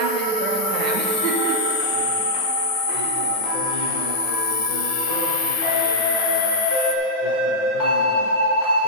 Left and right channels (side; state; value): right; late; 9.5 ms